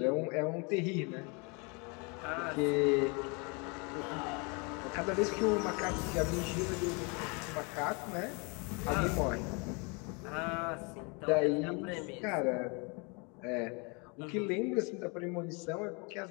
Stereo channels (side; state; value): right; quieter; 31.8 dB